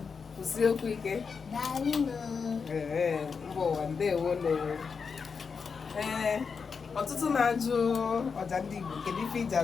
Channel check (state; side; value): quieter; right; 5.6 dB